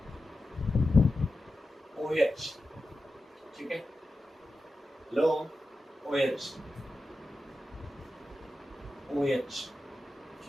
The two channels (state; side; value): normal; both; correlation 0.91